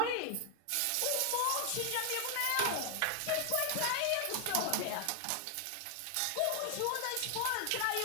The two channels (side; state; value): both; different; correlation 0.00